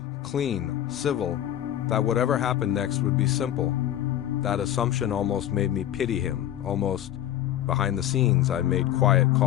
clean, civil, that whatever happened next would be simple. That assumption almost made me pity him, almost. Behind the scenes, I made quiet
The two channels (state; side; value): quieter; right; 12.0 dB